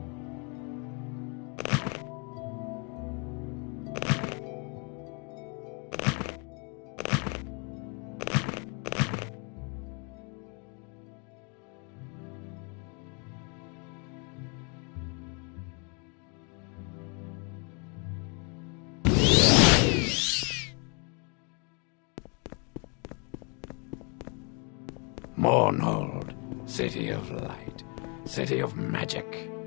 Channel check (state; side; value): quieter; right; 34.8 dB